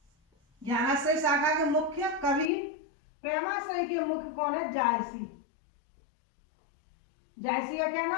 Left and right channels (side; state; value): right; drops out; at 2.5 s